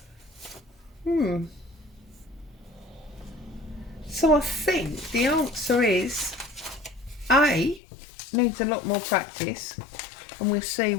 So I think the answer is A, needs a lot more practice, and we'll see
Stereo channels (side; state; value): right; drops out; at 7.8 s